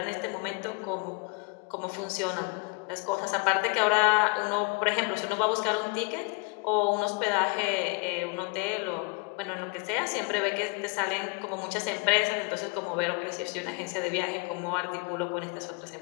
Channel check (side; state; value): right; quieter; 32.9 dB